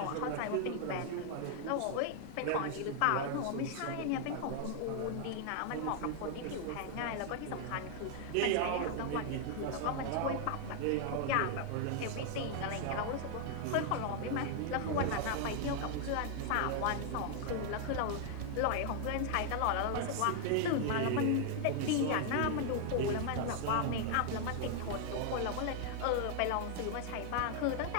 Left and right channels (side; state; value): both; different; correlation 0.00